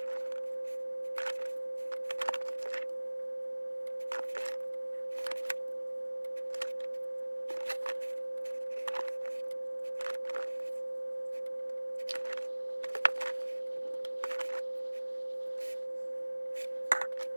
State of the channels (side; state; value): both; inverted; correlation -1.00